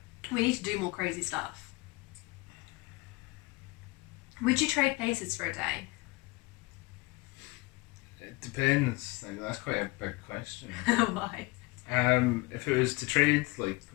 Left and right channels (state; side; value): quieter; right; 23.0 dB